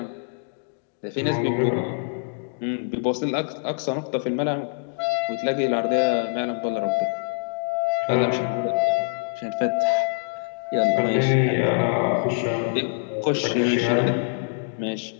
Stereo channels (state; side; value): silent; right; digital silence